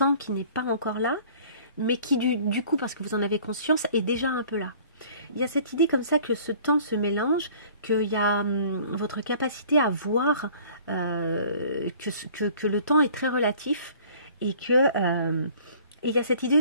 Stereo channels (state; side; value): inverted; both; correlation -0.52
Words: qui n'est pas encore là mais qui du coup parce que vous en avez conscience est déjà un peu là. Il y a cette idée comme ça que ce temps se mélange, qu'il y a votre capacité à voir que le temps est très relatif et que il y a cette idée